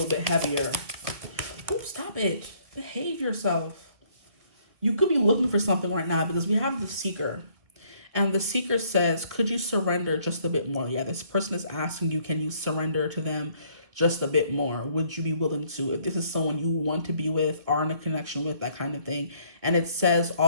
bit heavier. Ooh, stop it. Behave yourself. You could be looking for something right now because we have the Seeker. And the Seeker says, could you surrender just a bit more? Yeah, this person is asking you, can you surrender to them just a bit more? Would you be willing to? If this is someone you want to be with, are in a connection with, that kind of thing. And it says,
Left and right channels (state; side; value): late; left; 2.1 ms